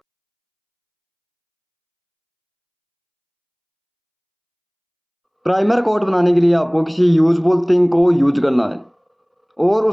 प्राइमर कोट बनाने के लिए आपको किसी यूजफुल थिंग को यूज करना है और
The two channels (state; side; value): identical; both; correlation 1.00